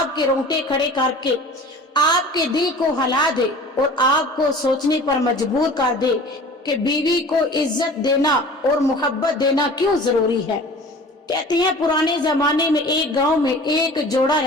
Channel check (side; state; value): both; normal; correlation 0.42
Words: کے رونگٹے کھڑے کر کے آپ کے دل کو ہلا دے اور آپ کو سوچنے پر مجبور کر دے کہ بیوی کو عزت دینا اور محبت دینا کیوں ضروری ہے. کہتے ہیں پرانے زمانے میں ایک گاؤں میں ایک جوڑا